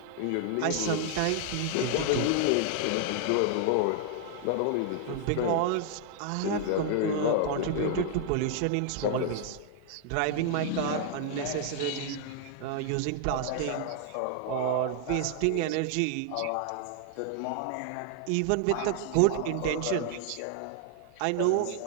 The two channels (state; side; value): different; both; correlation 0.00